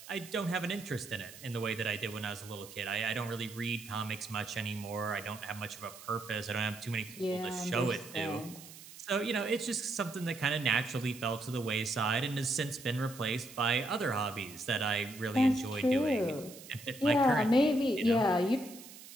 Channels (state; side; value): noise; right; hiss, 17 dB below the sound